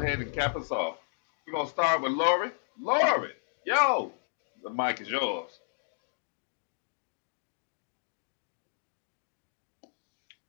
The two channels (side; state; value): right; silent; digital silence